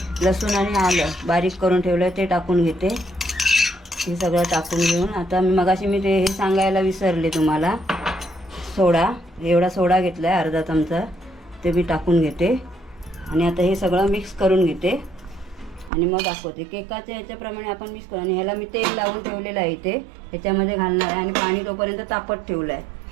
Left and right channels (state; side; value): drops out; left; at 15.9 s